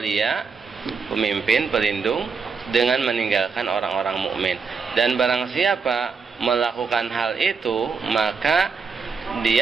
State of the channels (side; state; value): left; quieter; 5.3 dB